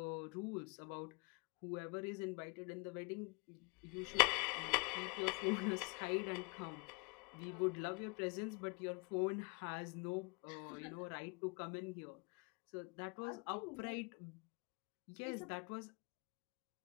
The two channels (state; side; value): quieter; right; 30.6 dB